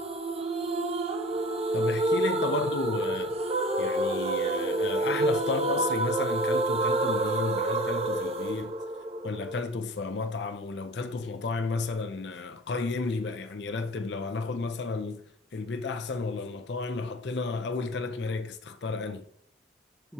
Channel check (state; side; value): normal; both; correlation 0.41